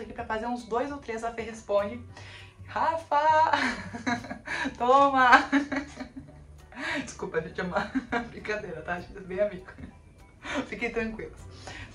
aqui pra fazer uns 2 ou 3 a Fê Responde. Rafa! Toma! Desculpa, gente, é uma brincadeira, tá? A gente é bem amigo. Fiquem tranquilos.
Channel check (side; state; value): both; identical; correlation 1.00